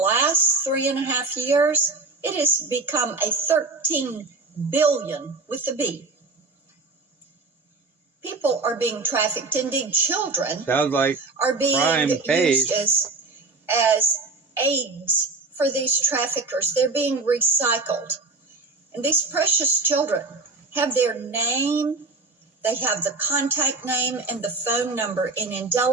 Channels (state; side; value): quieter; left; 3.6 dB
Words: 3.5 years, it has become a 13 billion with a B. People are being trafficked. Indeed, children sounds like are being pays. used as aids for these traffickers. They're being recycled. And these precious children have their name, they have the contact name and the phone number in